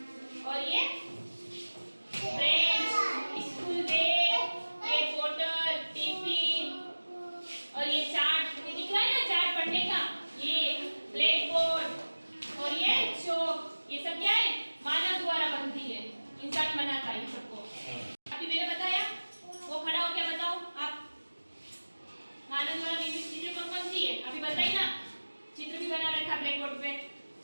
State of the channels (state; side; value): inverted; both; correlation -1.00